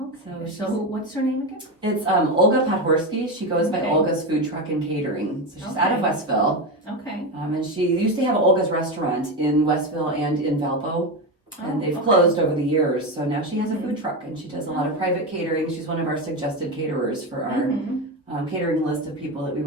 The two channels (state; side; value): normal; both; correlation 0.16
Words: so what's her name again? It's Olga Podhorsky. She goes by Okay. Olga's Food Truck and Catering. So she's out of Okay. Westville. Okay. And she used to have Olga's restaurant in Westville and in Valpo. And they've okay. closed over the years. So now she has a food truck and she does a lot of private catering. She's one of our suggested caterers for our Mhm. catering list of people that we